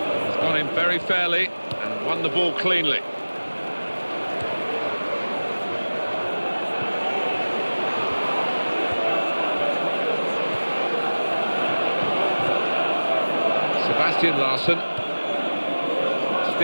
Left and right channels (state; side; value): inverted; both; correlation -1.00